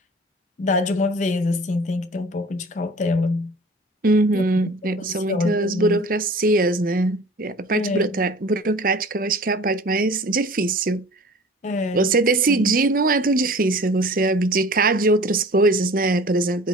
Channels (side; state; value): both; normal; correlation 0.44